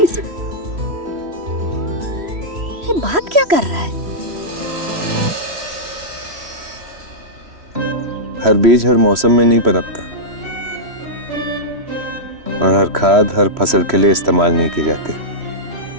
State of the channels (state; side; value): late; left; 3.1 ms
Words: ये बात क्या कर रहा है? हर बीज हर मौसम में नहीं पनपता और हर खाद हर फसल के लिए इस्तेमाल नहीं की जाती।